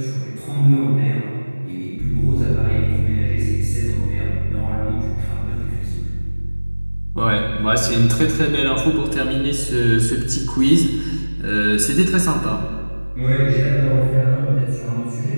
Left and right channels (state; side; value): inverted; both; correlation -1.00